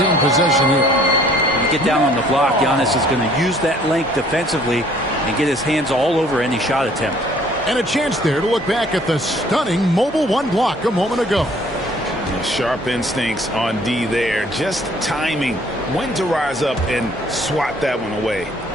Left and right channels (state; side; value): normal; both; correlation 0.58